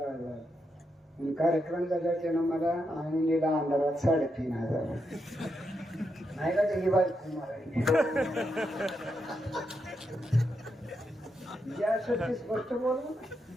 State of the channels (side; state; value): both; normal; correlation 0.83